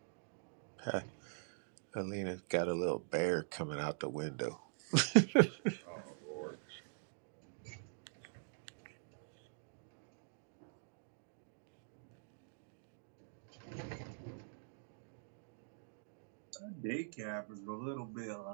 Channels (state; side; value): silent; left; digital silence